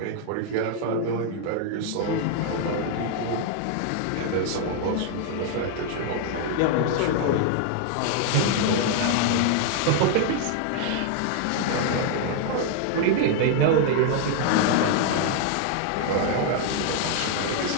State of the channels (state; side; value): different; both; correlation 0.00